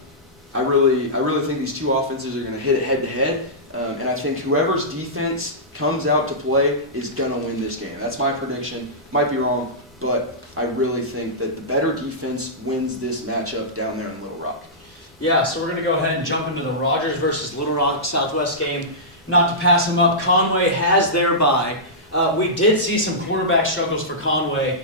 I really think these two offenses are going to hit it head to head, and I think whoever's defense comes out to play is going to win this game. That's my prediction. Might be wrong, but I really think that the better defense wins this matchup down there in Little Rock. Yeah, so we're going to go ahead and jump into the Rogers versus Little Rock Southwest game. Not to pass them up, Conway has their bye. We did see some quarterback struggles for Conway.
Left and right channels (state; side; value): normal; both; correlation -0.16